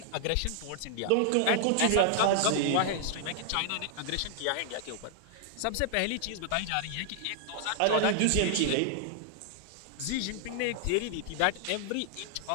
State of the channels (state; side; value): different; both; correlation 0.00